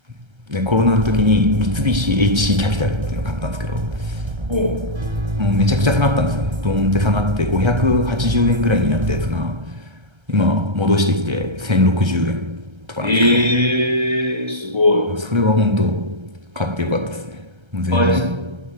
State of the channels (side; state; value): left; late; 1.3 ms